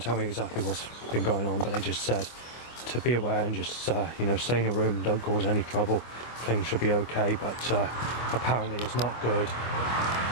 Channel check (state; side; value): late; right; 25 ms